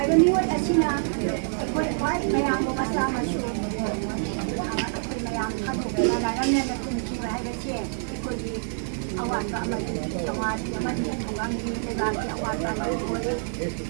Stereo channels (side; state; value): left; silent; 61 dB below the other